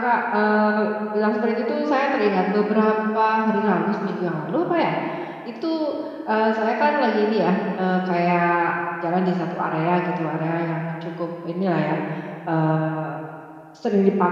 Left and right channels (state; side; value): identical; both; correlation 1.00